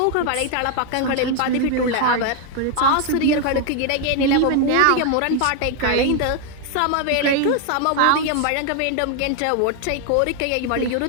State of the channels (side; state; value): both; different; correlation 0.00